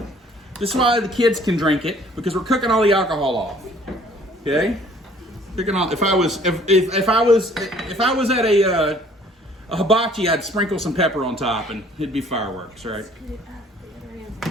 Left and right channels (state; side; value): normal; both; correlation 0.57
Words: This is why the kids can drink it, because we're cooking all the alcohol off. Okay? Cooking all. If I was at a hibachi, I'd sprinkle some pepper on top, and it'd be fireworks, right?